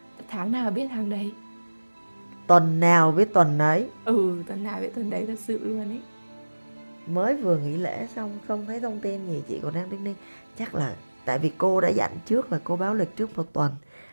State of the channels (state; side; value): inverted; both; correlation -1.00